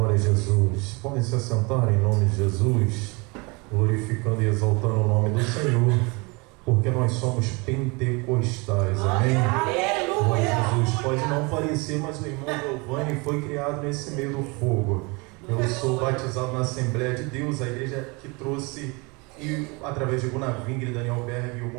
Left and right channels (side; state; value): left; quieter; 28.1 dB